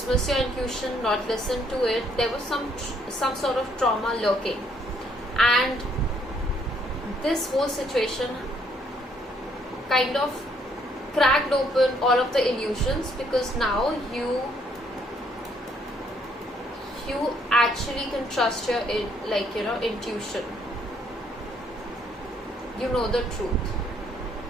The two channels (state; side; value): normal; both; correlation 0.68